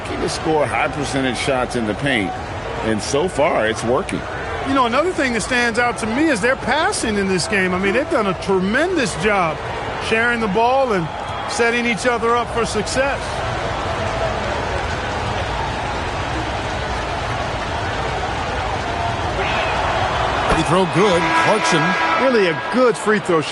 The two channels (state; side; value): identical; both; correlation 1.00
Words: to score high percentage shots in the paint. And so far, it's working. You know, another thing that stands out to me is their passing in this game. I mean, they've done a tremendous job sharing the ball and setting each other up for success. Free throw good. Clarkson. Really a good free throw